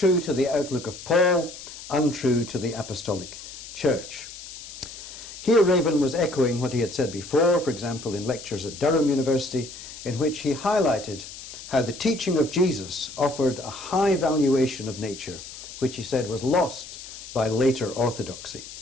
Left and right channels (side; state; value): left; noise; hiss, 13 dB below the sound